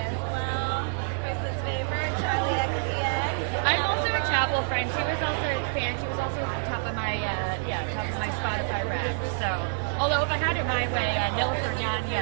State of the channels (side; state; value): left; silent; digital silence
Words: I'm also a Chapel friend. She was also a fan. She was also at the top of my Spotify Wrapped. So, although if I had it my way, Nilüfer